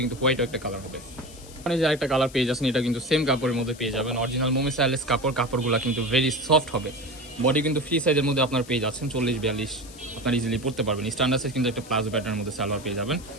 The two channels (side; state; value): left; noise; hiss, 19 dB below the sound